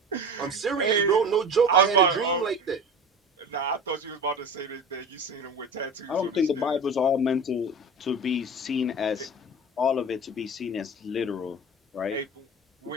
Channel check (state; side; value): normal; both; correlation 0.33